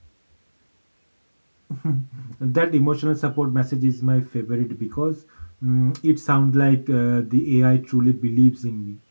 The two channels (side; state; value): both; inverted; correlation -1.00